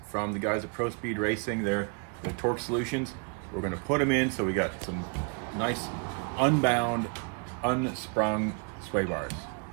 from the guys at Pro Speed Racing. They're the torque solutions. We're going to put them in, so we got some nice unbound, unsprung sway bars.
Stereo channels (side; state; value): left; quieter; 37.2 dB